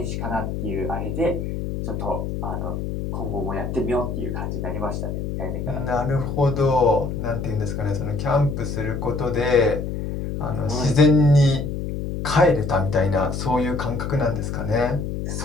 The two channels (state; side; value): noise; left; hum, 4 dB below the sound